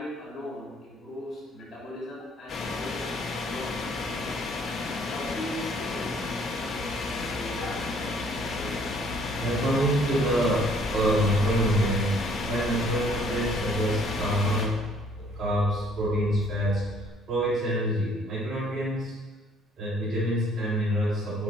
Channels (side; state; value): both; normal; correlation 0.60